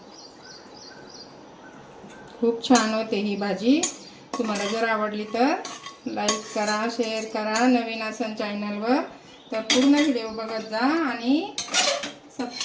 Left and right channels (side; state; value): both; identical; correlation 1.00